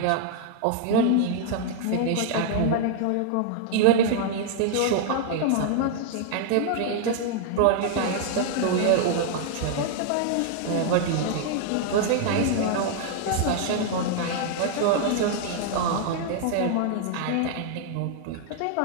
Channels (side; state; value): both; different; correlation -0.01